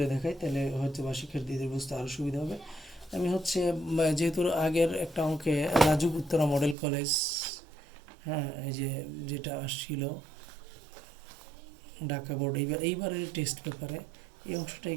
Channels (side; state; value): left; drops out; at 6.8 s